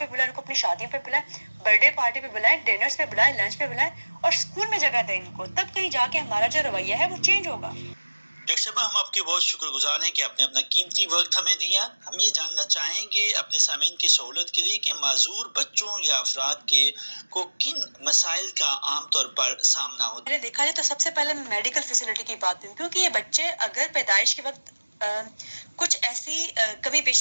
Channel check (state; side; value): inverted; both; correlation -1.00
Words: بلائیں، ان کو اپنی شادیوں پہ بلائیں، برتھ ڈے پارٹی پہ بلائیں، ڈنرز پہ بلائیں، لنچ پہ بلائیں، اور اسکول میں جگہ دیں ان کو، تب کہیں جا کے ہمارا جو رویہ ہے وہ چینج ہوگا۔ ڈاکٹر صاحبہ، ہم آپ کے بہت شکر گزار ہیں کہ آپ نے اپنا قیمتی وقت ہمیں دیا۔ ہم یہ جاننا چاہیں گے اپنے سامعین کی سہولت کے لیے کہ معذور بچوں یا افراد کو کن مسائل کا عام طور پر سامنا ہوتا ہے؟ میں نے دیکھا جائے تو سب سے پہلے میں میڈیکل فیسلٹی کی بات کروں، کیونکہ یہ بچے اگر پیدائش کے وقت کچھ ایسی کمی